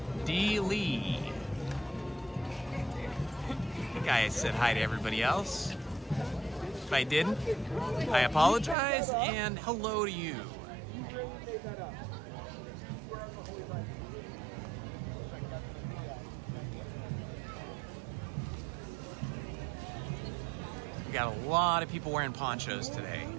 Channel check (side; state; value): left; drops out; at 8.8 s